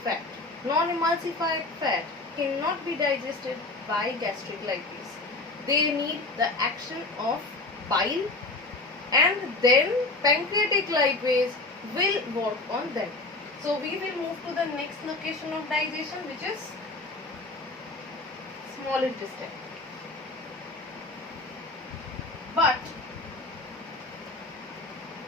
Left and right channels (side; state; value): right; quieter; 3.1 dB